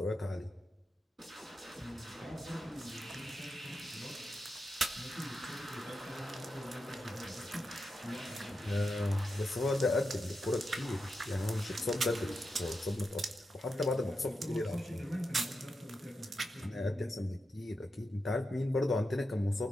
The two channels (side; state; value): both; normal; correlation 0.87